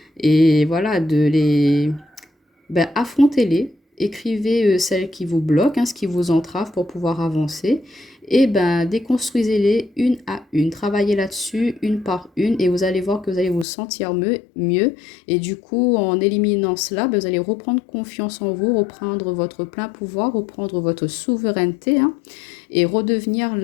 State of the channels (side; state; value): right; drops out; at 13.7 s